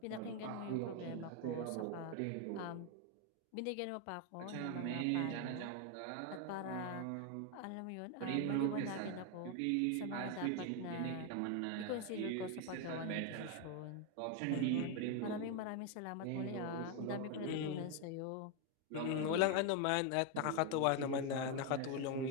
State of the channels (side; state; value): both; different; correlation 0.01